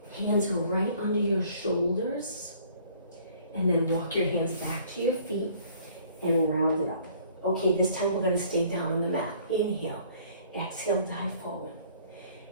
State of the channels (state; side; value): inverted; both; correlation -0.56